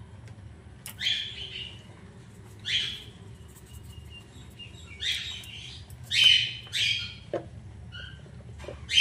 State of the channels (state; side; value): identical; both; correlation 1.00